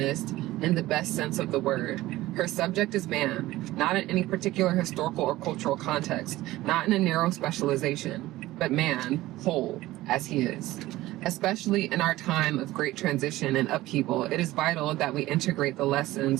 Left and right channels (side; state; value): left; quieter; 17.0 dB